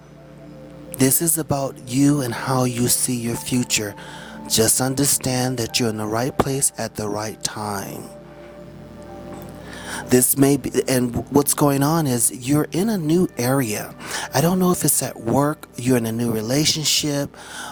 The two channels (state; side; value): identical; both; correlation 1.00